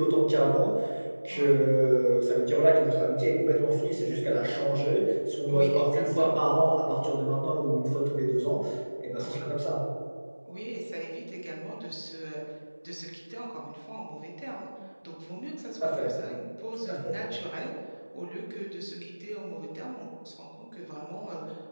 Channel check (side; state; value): both; inverted; correlation -1.00